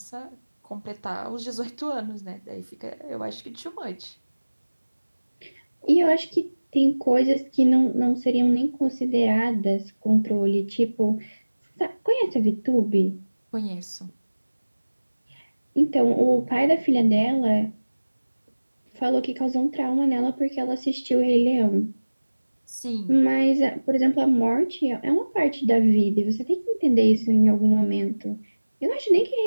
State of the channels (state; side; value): inverted; both; correlation -1.00